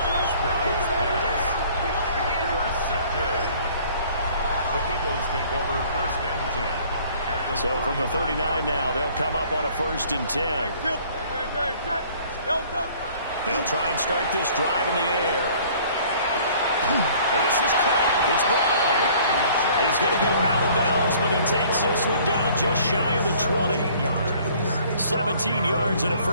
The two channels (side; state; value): both; inverted; correlation -0.54